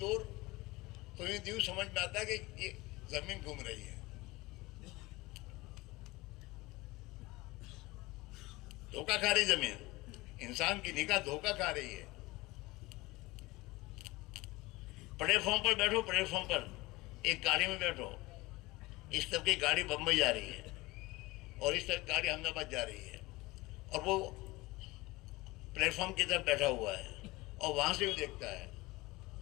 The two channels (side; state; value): right; quieter; 21.2 dB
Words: تو یوں سمجھ میں آتا ہے کہ یہ زمین گھوم رہی ہے۔ دھوکہ کھا رہی زمین، انسان کی نگاہ دھوکہ کھا رہی ہے۔ پلیٹ فارم پر بیٹھو، پلیٹ فارم پر ایک گاڑی میں بیٹھو، اس طرف کی گاڑی بمبئی جا رہی ہے اور اس طرف گاڑی احمد آباد جا رہی ہے، اور وہ پلیٹ فارم کی طرف بیٹھا ہوا ہے اور وہاں سے بھی دیکھتا ہے،